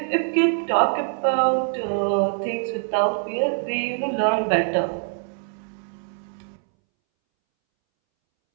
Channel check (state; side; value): silent; left; 63 dB below the other